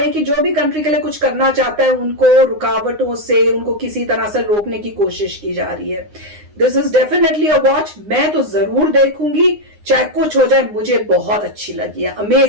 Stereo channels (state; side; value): late; left; 9.7 ms